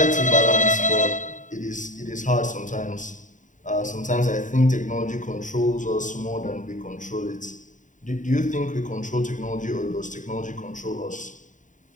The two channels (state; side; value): late; right; 0.37 ms